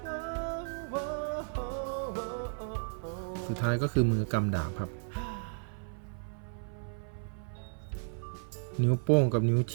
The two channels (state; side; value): silent; left; 55 dB below the other